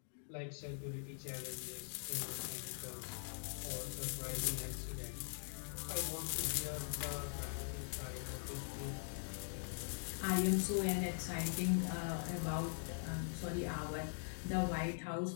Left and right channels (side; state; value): right; silent; digital silence